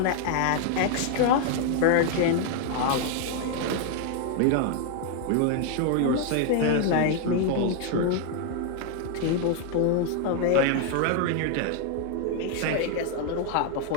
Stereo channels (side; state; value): both; different; correlation 0.00